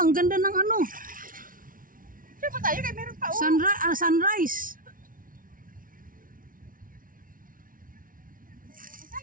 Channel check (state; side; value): late; left; 0.40 ms